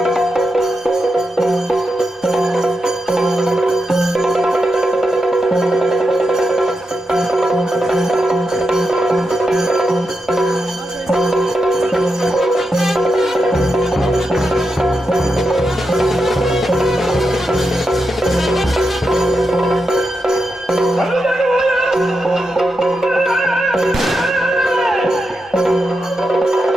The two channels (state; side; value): normal; both; correlation 0.86